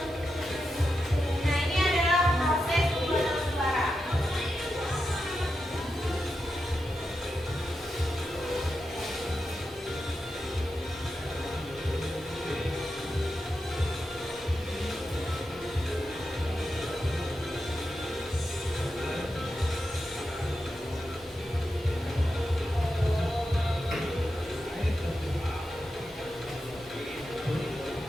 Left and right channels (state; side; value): normal; both; correlation 0.88